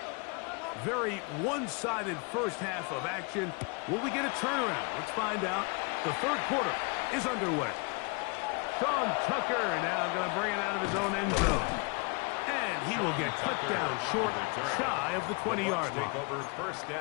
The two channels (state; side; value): quieter; right; 31.7 dB